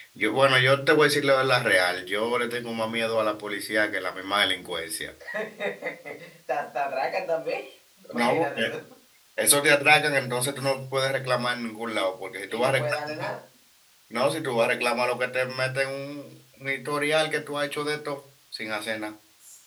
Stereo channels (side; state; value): both; identical; correlation 1.00